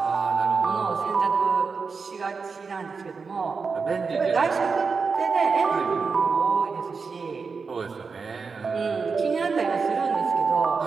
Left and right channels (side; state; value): left; quieter; 5.0 dB